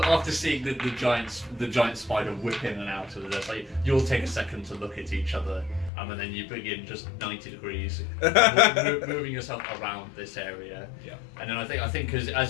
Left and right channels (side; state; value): right; drops out; at 5.9 s